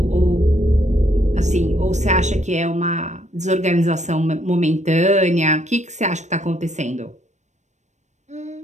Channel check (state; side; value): late; left; 0.34 ms